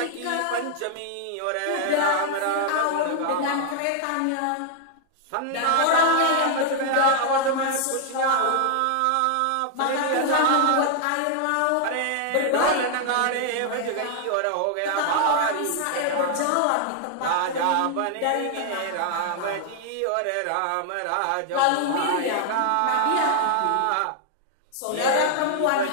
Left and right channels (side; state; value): both; different; correlation 0.00